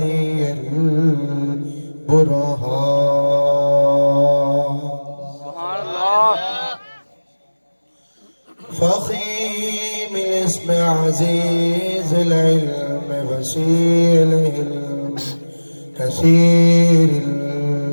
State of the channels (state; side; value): inverted; both; correlation -1.00